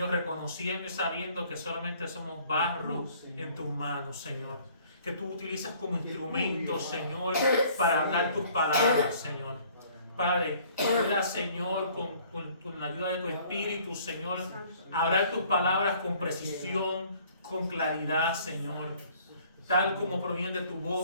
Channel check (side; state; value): both; inverted; correlation -0.57